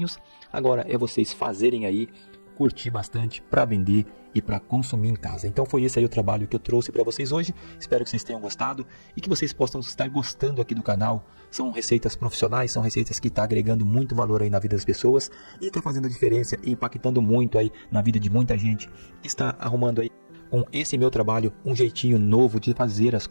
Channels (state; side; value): inverted; both; correlation -1.00